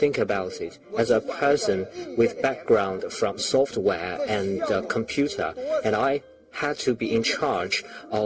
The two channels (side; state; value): both; identical; correlation 1.00